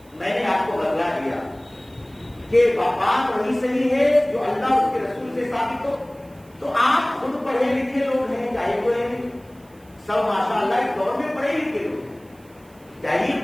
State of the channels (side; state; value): right; noise; hiss, 30 dB below the sound